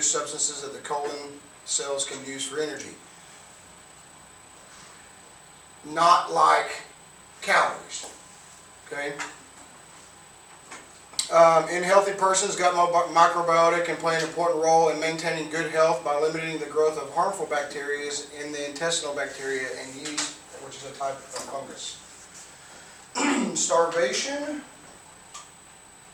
substances that the colon cells can use for energy. Not like calories. Okay. In healthy persons, gut microbiota can play an important role in maintaining good health by limiting the growth of harmful bacteria in the intestinal bacteria and yeast, which is a type of fungus. Starvation,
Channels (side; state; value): both; identical; correlation 1.00